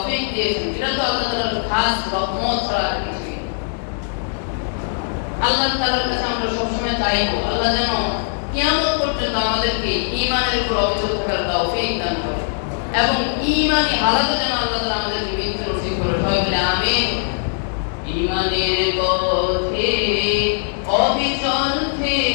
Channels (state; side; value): silent; right; digital silence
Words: দিয়েছেন, এটা তো আল্লাহ তাআলার খাস রহমত ছাড়া কিছু না। আল্লাহ তাআলার কাছে আমরা সবসময় চাইবো আল্লাহ যেন কিয়ামত পর্যন্ত আমাদেরকে ঈমানের উপর অবিচল থাকার তৌফিক দান করেন, এবং ঈমানি হালাতে যেন আল্লাহ তাআলা আমাদেরকে মৃত্যু নসিব করেন। সবাই বলে আমিন। ঈমানের পথে অবিচল